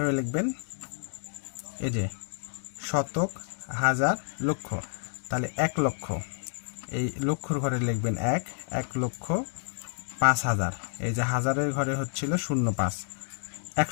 লিখবেন? এই যে শতক, হাজার, লক্ষ, তাহলে 1 লক্ষ, এই লক্ষর ঘরে লিখবেন 1,05,000। এই যে হাজারের ঘরে হচ্ছিল 05,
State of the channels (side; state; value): right; silent; digital silence